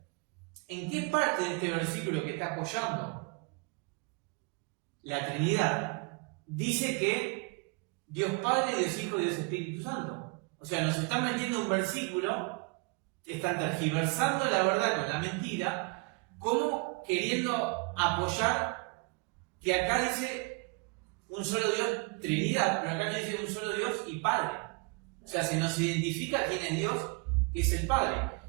¿en qué parte de este versículo que está apoyando la Trinidad dice que Dios Padre, Dios Hijo y Dios Espíritu Santo? O sea, nos está metiendo un versículo están tergiversando la verdad con la mentira, como queriendo apoyar que acá dice un solo Dios, Trinidad, pero acá no dice un solo Dios y Padre. O sea, se nos identifica quién es Dios, que es el Padre.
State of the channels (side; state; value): left; quieter; 29.7 dB